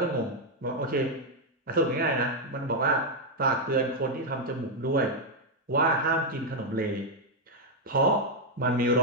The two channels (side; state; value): both; normal; correlation 0.01